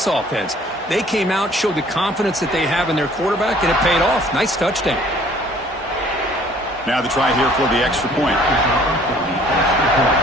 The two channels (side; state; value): both; normal; correlation 0.56